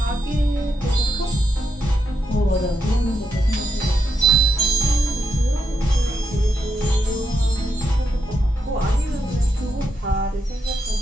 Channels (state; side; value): normal; both; correlation 0.82